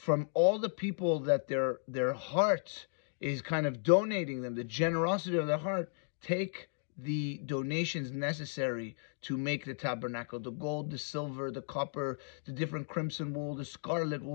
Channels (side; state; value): right; silent; digital silence